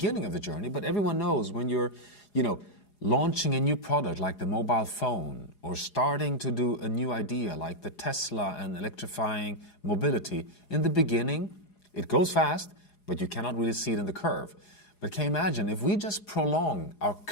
of the journey, but everyone knows when you're, launching a new product like the mobile phone, or starting to do a new idea like the Tesla and electrifying mobility, in the beginning, it goes fast, but you cannot really see it in the curve. But can you imagine if we just prolong our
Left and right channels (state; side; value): late; right; 4.8 ms